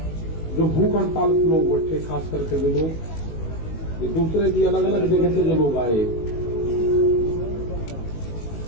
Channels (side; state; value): right; late; 19 ms